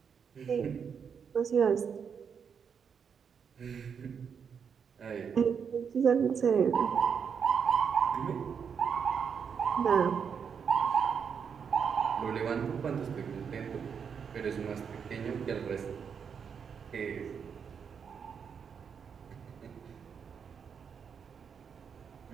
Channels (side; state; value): left; quieter; 6.8 dB